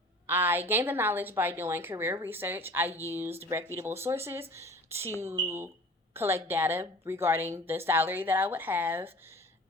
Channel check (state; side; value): normal; both; correlation 0.44